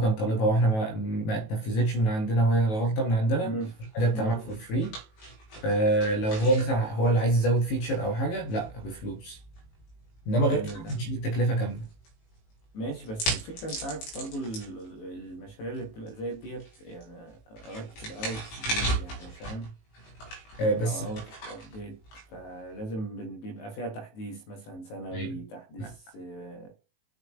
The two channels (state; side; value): late; right; 18 ms